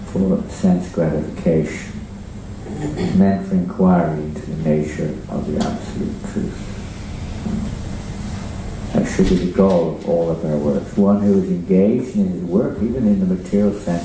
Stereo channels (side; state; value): both; identical; correlation 1.00